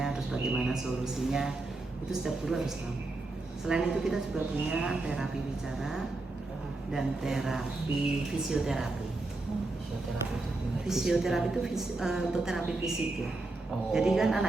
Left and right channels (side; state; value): left; quieter; 3.1 dB